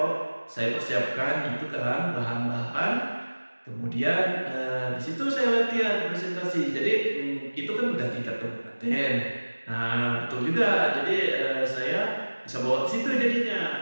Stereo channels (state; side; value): inverted; both; correlation -1.00